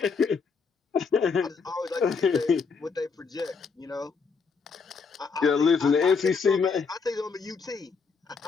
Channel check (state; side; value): quieter; right; 5.2 dB